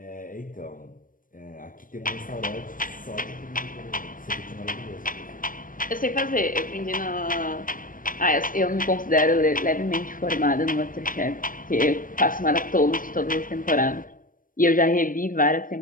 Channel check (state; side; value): late; right; 0.40 ms